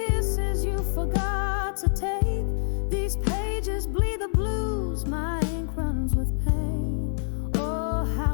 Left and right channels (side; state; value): right; silent; digital silence